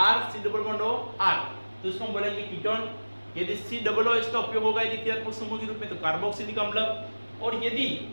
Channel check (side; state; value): both; inverted; correlation -1.00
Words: C double bond O R, तो उसको हम बोलेंगे कीटोन। यदि C डबल O इसका उपयोग होगा यदि क्रियात्मक समूह के रूप में, तो कार्बोक्सिलिक अम्ल। और यदि